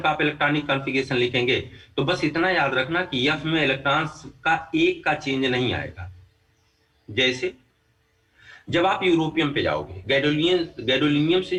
का आप इलेक्ट्रॉनिक कॉन्फ़िगरेशन लिखेंगे तो बस इतना याद रखना कि F में इलेक्ट्रॉन्स का एक का चेंज नहीं आएगा। जैसे जब आप यूरोपियम पे जाओगे, गैडोलिनियम से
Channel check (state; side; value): identical; both; correlation 1.00